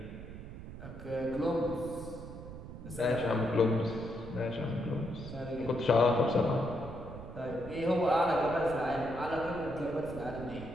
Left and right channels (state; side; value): noise; right; rumble, 12 dB below the sound